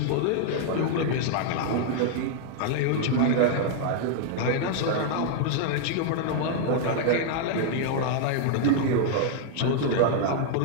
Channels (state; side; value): different; both; correlation 0.00